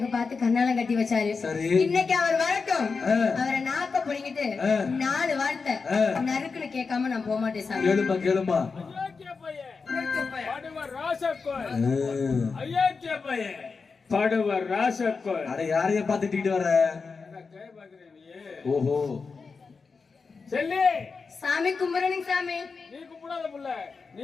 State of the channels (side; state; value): right; quieter; 4.8 dB